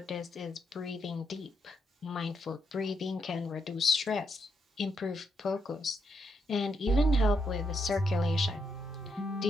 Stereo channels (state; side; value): normal; both; correlation 0.79